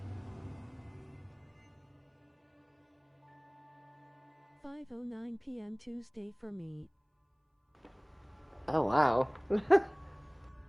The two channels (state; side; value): identical; both; correlation 1.00